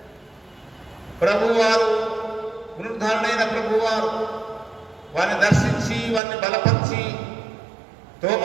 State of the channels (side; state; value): left; drops out; at 6.2 s